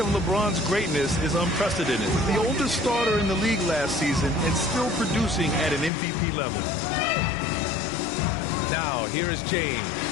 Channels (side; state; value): right; drops out; at 5.9 s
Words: LeBron's greatness is unprecedented. The oldest starter in the league last season and still producing at an MVP level. Now, here is James.